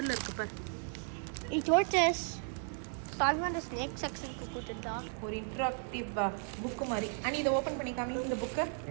இருக்கு பாரு. நீ டோட்டஸ் சால்வான ஸ்னேக் செக்ஷனுக்கு கூட்டிட்டா. ஒரு இன்ட்ராக்டிவ் புக்கு மாதிரி. அனி இதை ஓப்பன் பண்ணி காமி இந்த புக்கு.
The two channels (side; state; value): left; silent; 54 dB below the other